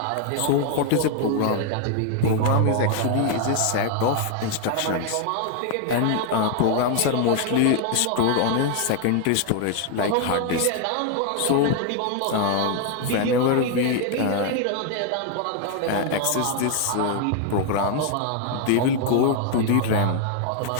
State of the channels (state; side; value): different; both; correlation 0.00